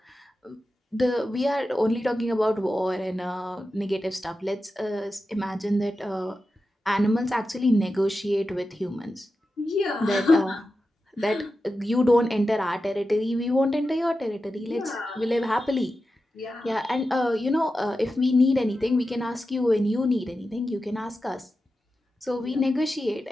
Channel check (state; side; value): normal; both; correlation 0.92